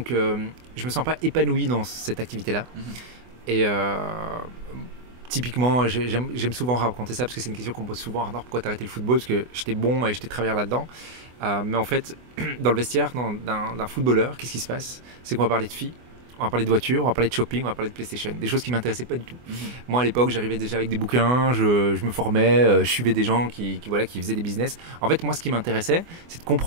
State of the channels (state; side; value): late; left; 24 ms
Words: je me sens pas épanoui dans cette activité-là. Et typiquement, j'aime souvent raconter ça parce que c'est une question qu'on me pose souvent. Alors, pourquoi t'as arrêté le football ? Parce que j'étais bon et j'étais travailleur là-dedans. Mais en fait, dans le vestiaire d'un footballeur, qu'est-ce qui se passe ? C'est qu'on va parler de filles, on va parler de voitures, on va parler de shopping, on va parler de PlayStation. Des choses qui ne m'intéressaient pas du tout. Moi, à l'époque, j'arrivais déjà avec des bouquins, je me formais, je suivais des gens qui faisaient des business. En fait, moi, ce qui m'intéressait, c'est de